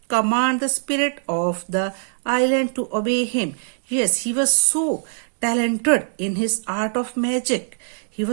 command the spirit of the island to obey him. Yes, he was so talented in his art of magic. He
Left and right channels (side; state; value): left; silent; digital silence